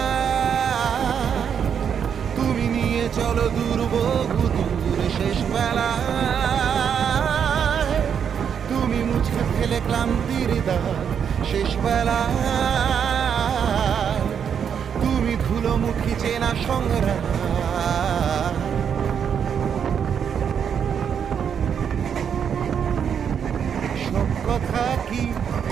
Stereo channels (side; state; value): left; quieter; 7.7 dB